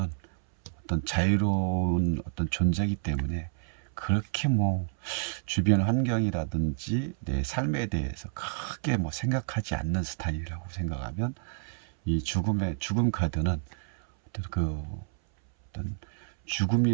어떤 자유로운 어떤 존재이기 때문에 그렇게 뭐 주변 환경이라든지 내 삶에 대해서 크게 뭐 생각하지 않는 스타일이라고 생각하면 이 죽음 카드는 어떤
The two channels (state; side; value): silent; left; 58 dB below the other